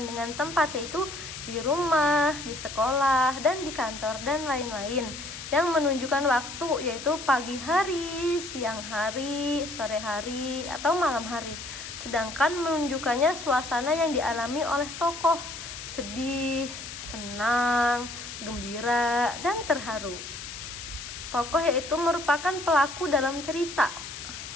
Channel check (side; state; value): left; noise; hiss, 10 dB below the sound